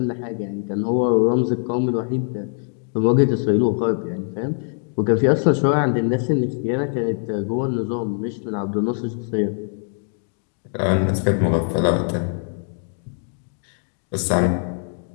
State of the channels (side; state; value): right; silent; 60 dB below the other